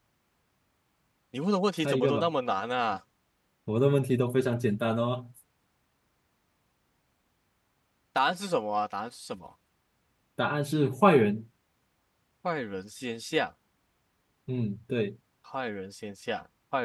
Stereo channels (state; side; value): identical; both; correlation 1.00